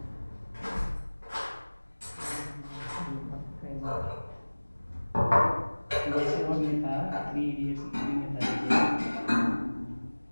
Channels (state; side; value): inverted; both; correlation -1.00